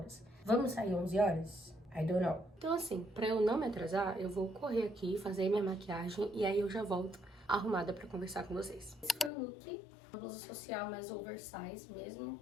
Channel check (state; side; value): drops out; right; at 9.3 s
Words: Vamos sair 11 horas? I don't know. Então, assim, pra eu não me atrasar, eu vou correr aqui, fazer minha maquiagem e aí eu já volto arrumada pra conversar com vocês. Esse foi o look. Uma blusa social mais oversize mesmo,